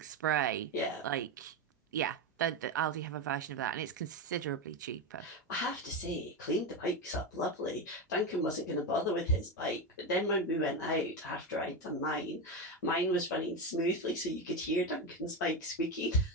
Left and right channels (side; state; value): both; normal; correlation 0.14